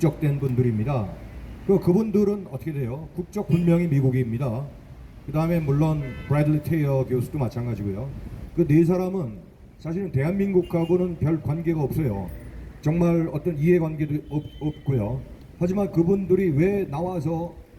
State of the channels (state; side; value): identical; both; correlation 1.00